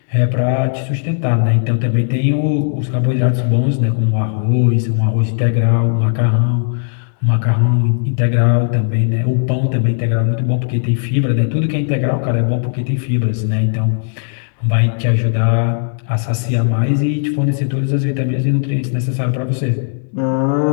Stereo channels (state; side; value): silent; right; digital silence